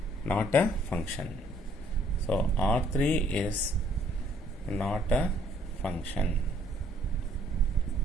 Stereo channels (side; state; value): both; normal; correlation 0.63